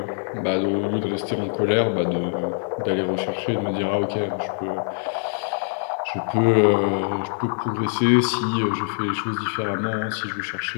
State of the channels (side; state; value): right; silent; 61 dB below the other